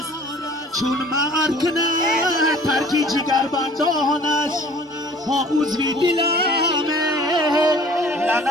چون مرد کنه ترکی جگر بندان است. ها عضوی دلمه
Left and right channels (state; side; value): normal; both; correlation 0.50